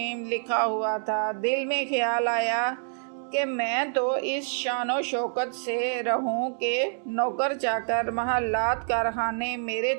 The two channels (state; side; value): silent; left; digital silence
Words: لکھا ہوا تھا۔ دل میں خیال آیا کہ میں تو اس شان و شوکت سے رہوں کہ نوکر چاکر، محلات، کارخانے میرے